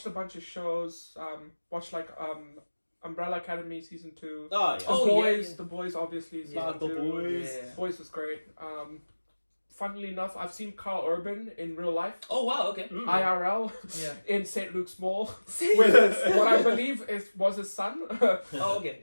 a bunch of shows. Watched like Umbrella Academy season 2. Oh, yeah. The Oh, Boys. yeah. The Boys obviously is Yeah, season The 2. Boys. Yeah. Boys was great. Funnily enough, I've seen Carl Urban in real life, Oh wow. Okay. IRL, Yeah. in St. Luke's Mall, with what I believe was his son. Oh okay.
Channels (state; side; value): inverted; both; correlation -1.00